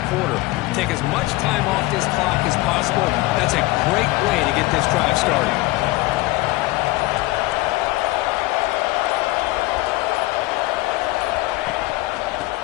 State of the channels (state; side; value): quieter; right; 20.2 dB